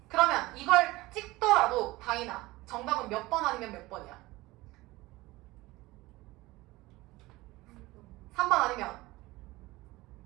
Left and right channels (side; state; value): left; quieter; 19.9 dB